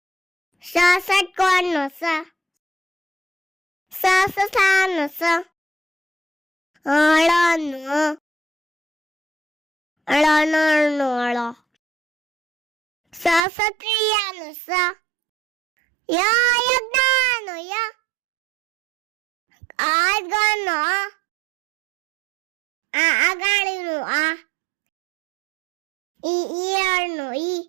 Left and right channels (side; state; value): left; drops out; at 13.4 s